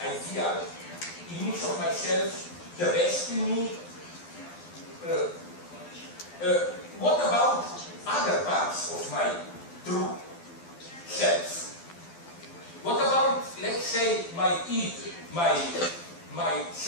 ideal image of myself, the best in me. What about other parts of my true self? What about, let's say, my id, my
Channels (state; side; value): late; right; 12 ms